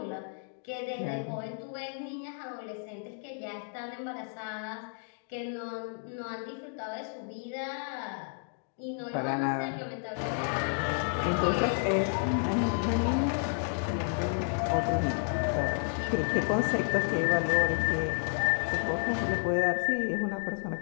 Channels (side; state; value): right; silent; 57 dB below the other